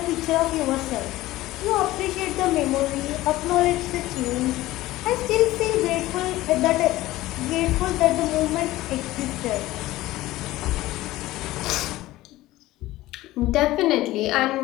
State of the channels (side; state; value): right; quieter; 17.0 dB